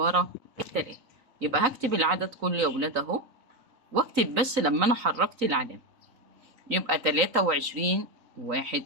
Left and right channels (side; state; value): left; late; 3.9 ms